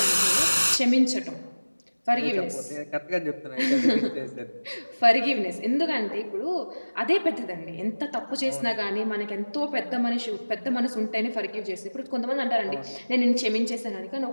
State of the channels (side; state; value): both; inverted; correlation -1.00